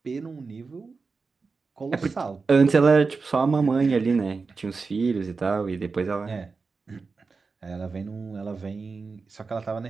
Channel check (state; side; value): quieter; left; 4.5 dB